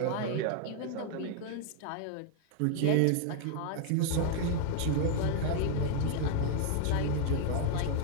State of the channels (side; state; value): both; different; correlation 0.00